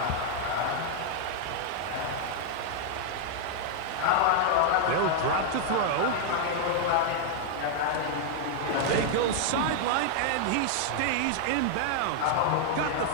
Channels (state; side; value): different; both; correlation -0.01